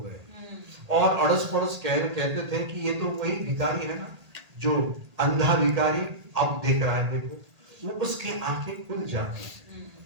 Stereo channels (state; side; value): late; left; 1.8 ms